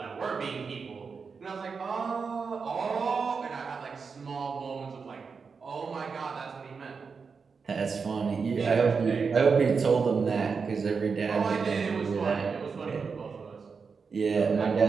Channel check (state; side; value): quieter; left; 5.3 dB